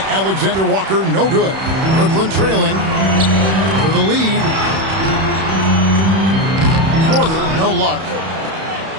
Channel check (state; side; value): late; left; 31 ms